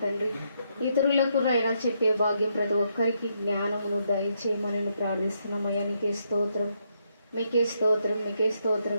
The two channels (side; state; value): both; inverted; correlation -0.77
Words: తండ్రి ఇతరులకు నాయన చెప్పే భాగ్యం ప్రతి ఒక్కరికి జ్ఞానమును దయచేయమని ప్రార్థిస్తున్నామయ్యా. నీకే స్తోత్రం, మీకే స్తోత్రం, మీకే